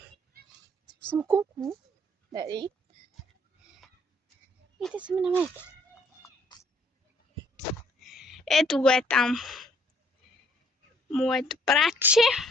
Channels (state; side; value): normal; both; correlation 0.63